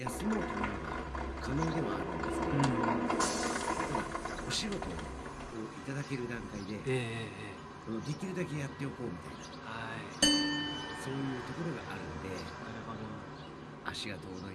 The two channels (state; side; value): identical; both; correlation 1.00